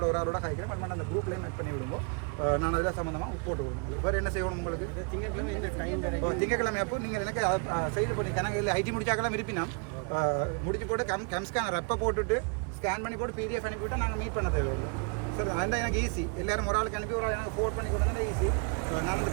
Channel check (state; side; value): quieter; left; 35.5 dB